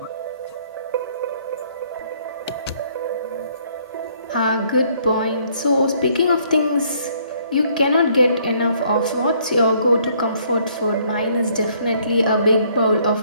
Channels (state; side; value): inverted; both; correlation -0.65